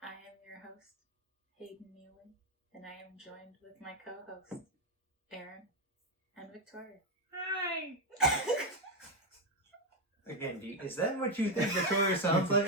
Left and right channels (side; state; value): both; normal; correlation 0.06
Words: I am your host, Hayden Neely, and I am joined with my co-hosts, Aaron and Victoria. Hi! Again, is that what you think Victoria sounds like?